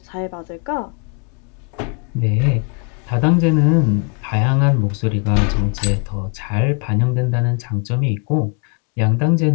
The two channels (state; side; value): quieter; right; 36.5 dB